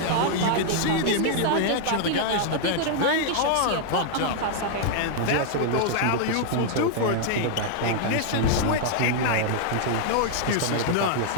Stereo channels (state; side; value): different; both; correlation 0.00